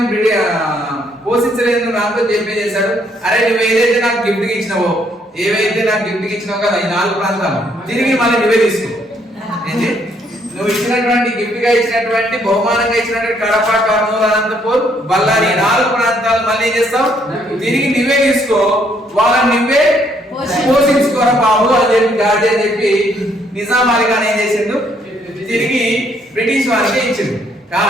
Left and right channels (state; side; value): normal; both; correlation 0.69